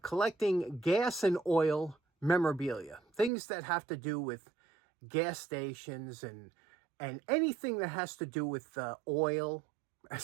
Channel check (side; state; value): left; drops out; at 3.3 s